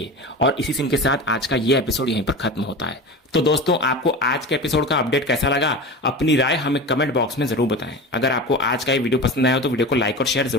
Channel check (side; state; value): both; normal; correlation 0.30